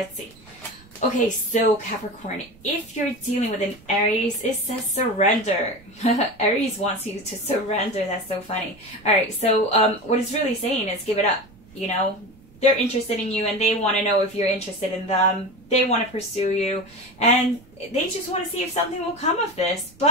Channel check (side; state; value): right; noise; rumble, 25 dB below the sound